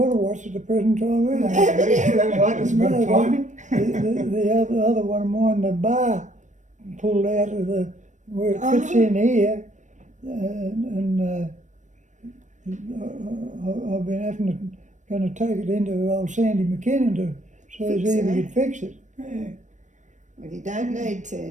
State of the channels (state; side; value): late; left; 0.35 ms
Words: a watch at the present time either. That right, it's good timing. The other one of mine, the bar pulled out of the where it fits in here, and I've been going to take it into old Sandy McKinnon to so Fix he it, could fix it. Yeah. Well, you don't need to